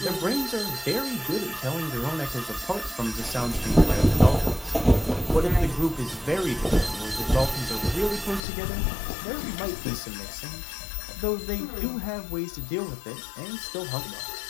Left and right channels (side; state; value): right; drops out; at 8.4 s